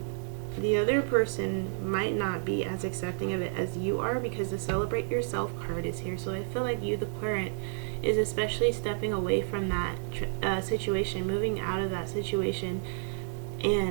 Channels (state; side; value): silent; left; 58 dB below the other